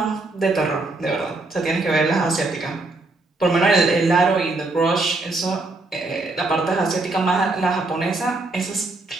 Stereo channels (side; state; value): left; quieter; 3.2 dB